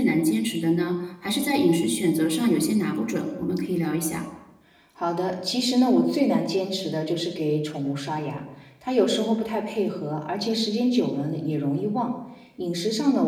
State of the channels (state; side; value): identical; both; correlation 1.00